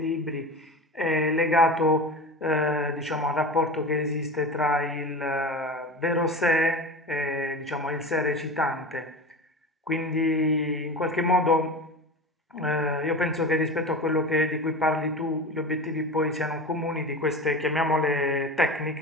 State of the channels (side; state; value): both; normal; correlation 0.31